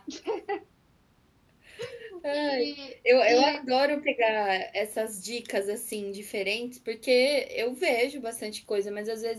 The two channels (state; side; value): identical; both; correlation 1.00